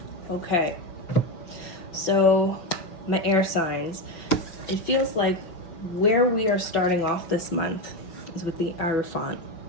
Okay, so my air signs, it feels like where we are starting off this month is with the Hierophant.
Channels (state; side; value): late; right; 5.7 ms